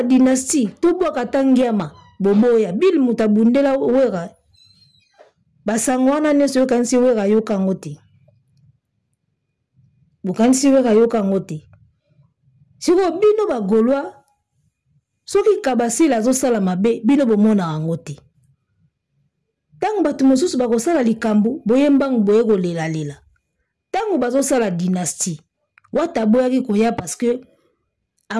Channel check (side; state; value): both; identical; correlation 1.00